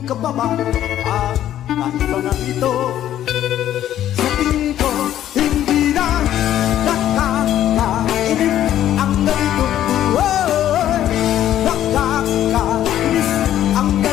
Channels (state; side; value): quieter; right; 11.8 dB